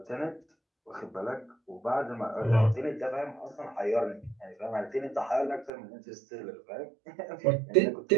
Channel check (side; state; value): left; drops out; at 5.7 s